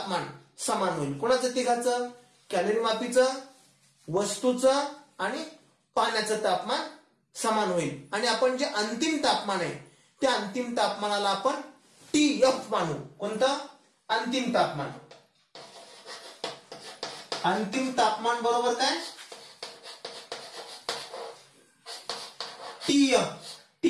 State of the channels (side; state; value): both; identical; correlation 1.00